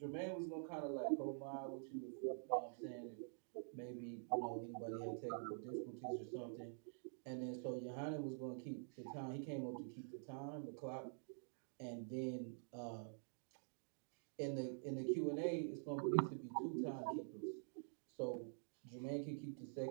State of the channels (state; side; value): silent; left; digital silence